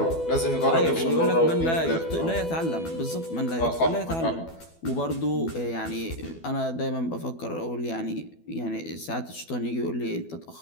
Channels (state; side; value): late; right; 12 ms